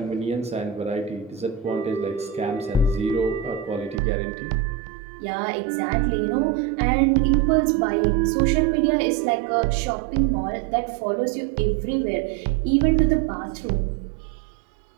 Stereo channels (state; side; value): drops out; left; at 4.0 s